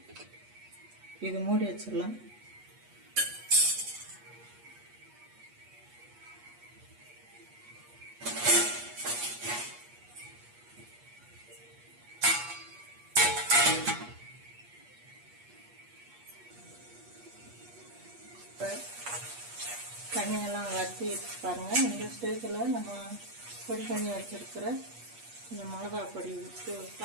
இது மூடி வச்சிடலாம். தண்ணியெல்லாம் வற்றி பாருங்கள். இந்த ஸ்டேஜில் நம்ம பொடி பண்ணி வச்சுருக்கிற இந்த மிளகா பொடி விட்டு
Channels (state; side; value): late; left; 8.4 ms